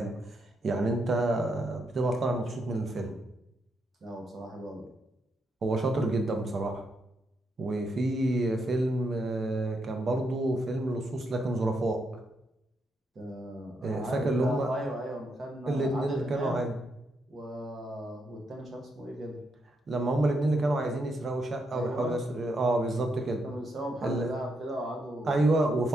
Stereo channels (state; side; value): normal; both; correlation 0.80